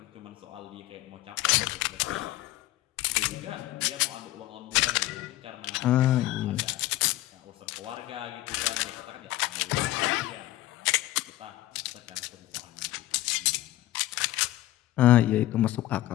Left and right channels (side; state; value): right; quieter; 15.7 dB